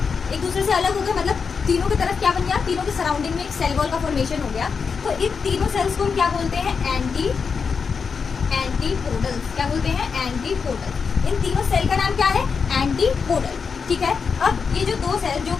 एक दूसरे से अलग हो गए, मतलब तीनों की तरफ क्या बन गया, तीनों के सराउंडिंग में एक सेल वॉल का फॉर्मेशन हो गया। तो इन तीनों सेल्स को हम क्या बोलते हैं, एंटीपोडल्स। क्या बोलते हैं, एंटीपोडल। इन तीनों सेल का नाम क्या है, एंटीपोडल, ठीक है। अब ये जो 2 सेल जो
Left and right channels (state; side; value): quieter; right; 5.6 dB